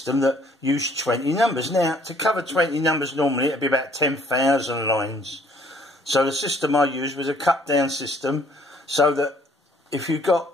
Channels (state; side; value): normal; both; correlation 0.61